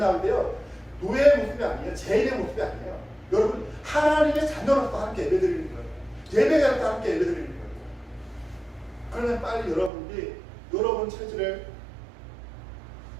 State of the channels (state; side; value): drops out; left; at 9.9 s